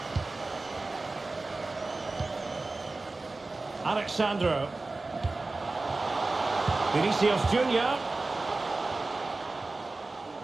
Alexandro. Vinicius Junior.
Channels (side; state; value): left; quieter; 3.3 dB